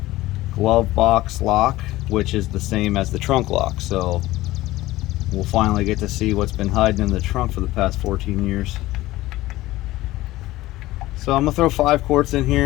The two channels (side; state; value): right; quieter; 17.3 dB